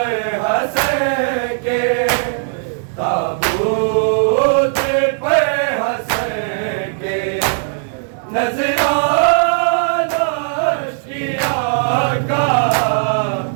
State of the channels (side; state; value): left; silent; digital silence